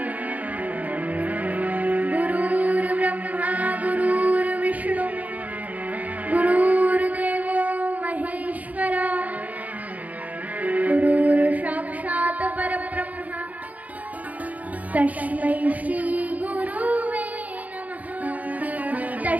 गुरुर् ब्रह्मा गुरुर्विष्णु गुरुर्देवो महेश्वरा गुरुर्साक्षात् परब्रह्म तस्मै श्री गुरुवे नमः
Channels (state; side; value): late; left; 0.075 ms